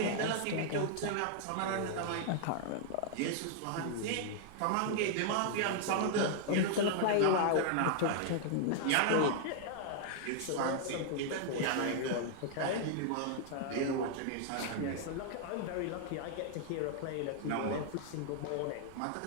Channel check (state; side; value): different; both; correlation 0.00